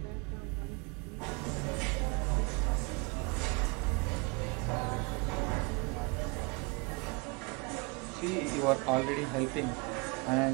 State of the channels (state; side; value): quieter; left; 30.4 dB